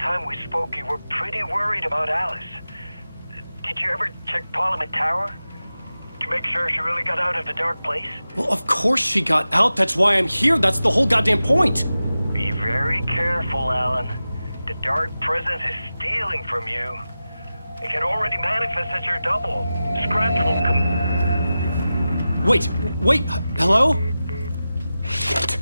we spoke, you were pretty worried about Alice. Did you ever check Parliament Tower? To make sure she really got out of the dark place? Well, of course she got out. That's why I'm here. That's the whole goddamn point. Be very careful, Alan. The dark presence is stealing from you. It can already manifest as your double. Scratch will come... Wait, hello? Shit.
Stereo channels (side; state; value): both; inverted; correlation -0.94